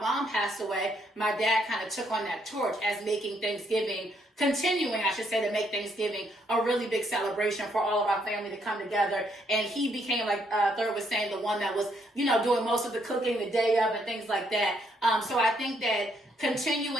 passed away, my dad kind of took on that torch as making Thanksgiving, continuing, I should say, to make Thanksgiving a really big celebration for all of our family to come together. And he became, like Third was saying, the one that was, you know, doing most of the cooking the day of and things like that. So I think that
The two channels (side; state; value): both; normal; correlation 0.72